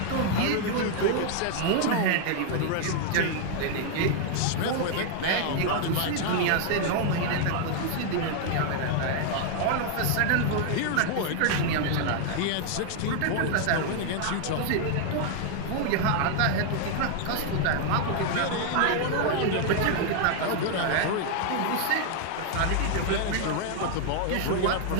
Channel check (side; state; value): both; different; correlation 0.00